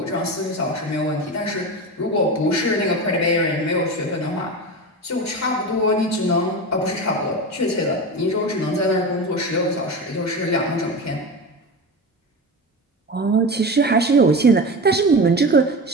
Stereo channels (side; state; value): both; normal; correlation 0.26